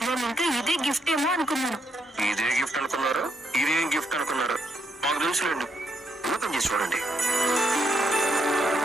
నేను ఇంకా ఇదే గిఫ్ట్ ఏమో అనుకున్నాను. ఇదే గిఫ్ట్ అనుకున్నారు, ఇదేం గిఫ్ట్ అనుకున్నారు? మాకు తెలుసులేండి, ఓపెన్ చేసి చూడండి.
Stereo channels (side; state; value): both; normal; correlation 0.77